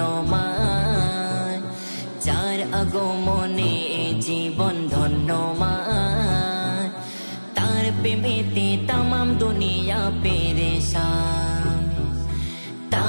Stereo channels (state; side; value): inverted; both; correlation -1.00